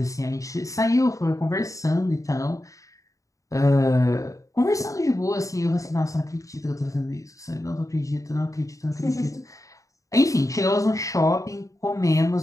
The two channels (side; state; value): right; late; 0.16 ms